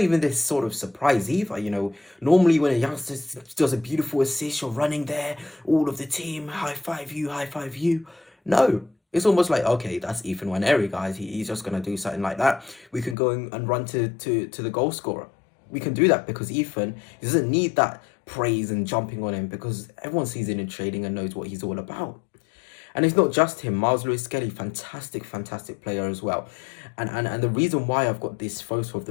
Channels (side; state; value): right; drops out; at 13.2 s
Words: even this sort of surprise either. Normally when a youngster does a beautiful assist, you're running there, all of the team, high five you, high five you. No, it's almost like, okay, that's Ethan Nwaneri, guys. He's just going to do something like that. We can go and run to the goal scorer. We can do that because Ethan, he doesn't need that praise and jumping on him, because everyone sees him in training and knows what he's all about. And it's not just him. Lewis-Skelly, fantastic player as well. And the reason why I've got this photo of